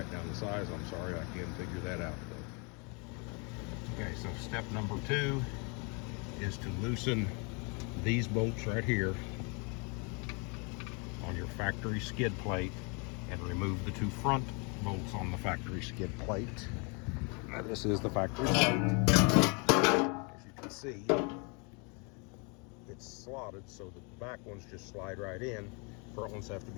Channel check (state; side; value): quieter; right; 33.4 dB